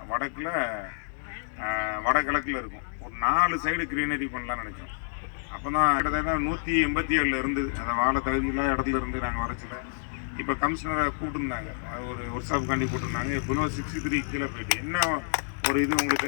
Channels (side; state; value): right; silent; digital silence